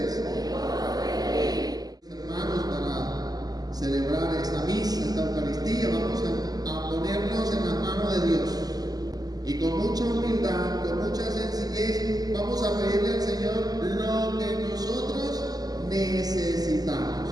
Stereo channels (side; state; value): left; late; 0.18 ms